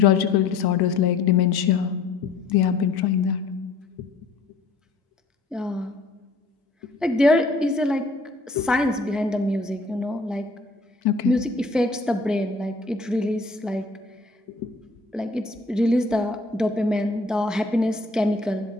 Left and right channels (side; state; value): right; quieter; 3.6 dB